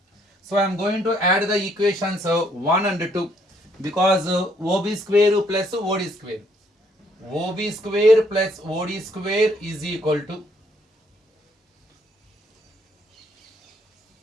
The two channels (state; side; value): normal; both; correlation 0.68